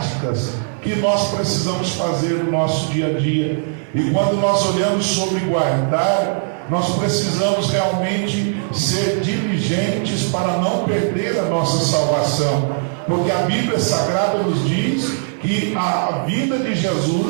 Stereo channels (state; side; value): silent; left; 62 dB below the other